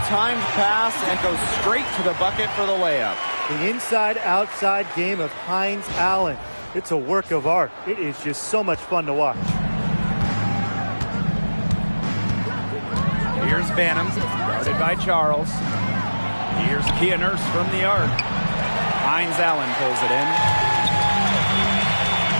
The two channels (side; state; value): both; inverted; correlation -1.00